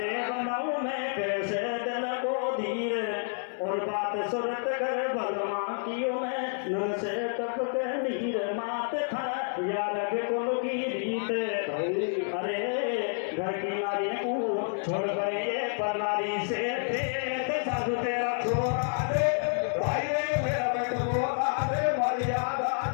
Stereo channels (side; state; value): right; silent; 58 dB below the other